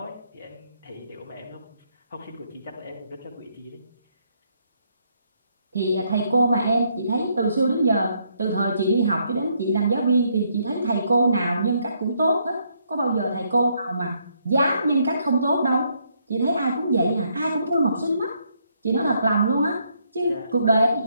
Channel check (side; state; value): both; inverted; correlation -0.73